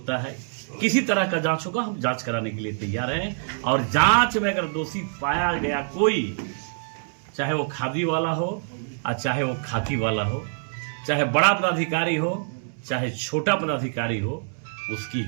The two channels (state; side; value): silent; left; 62 dB below the other